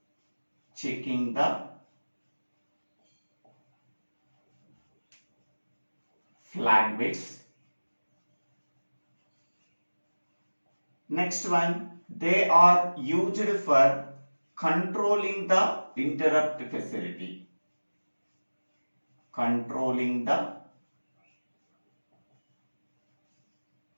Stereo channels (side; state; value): both; inverted; correlation -1.00